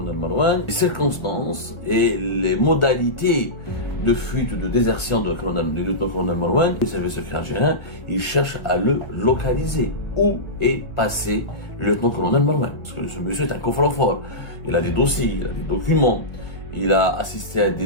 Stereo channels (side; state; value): right; late; 1.2 ms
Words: Marouane, les circonstances et les modalités de fuite ou de désertion du lieutenant-colonel Marouane. Les services secrets algériens, ils cherchent à le localiser. Où est passé le lieutenant-colonel Marouane? Parce que ce monsieur est un coffre-fort. Il a des dossiers, il a des documents, il a assisté à